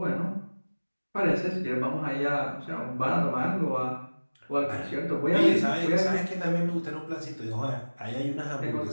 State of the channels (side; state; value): both; inverted; correlation -1.00